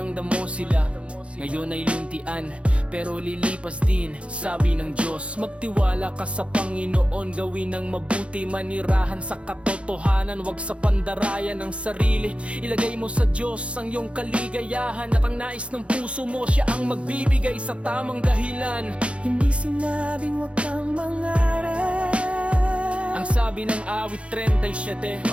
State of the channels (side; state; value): left; late; 0.060 ms